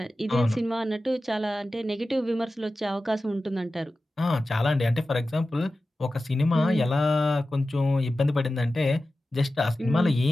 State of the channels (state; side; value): normal; both; correlation 0.94